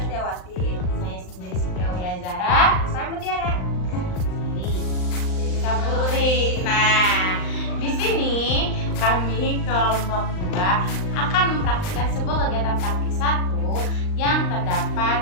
Saya sendiri Siti Zara. Saya Mutiara. Jadi Putri. Nah, di sini kami kelompok 2 akan mempraktikkan sebuah kegiatan praktik 1 yang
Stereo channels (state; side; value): late; right; 39 ms